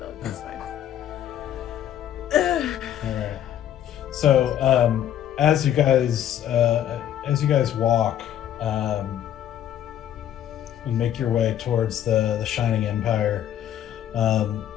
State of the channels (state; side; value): quieter; right; 10.9 dB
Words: dog. It's fine. All right. So as you guys walk and make your way towards the Shining Empire,